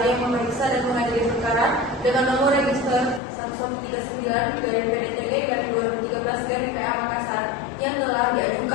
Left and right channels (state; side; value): drops out; right; at 3.2 s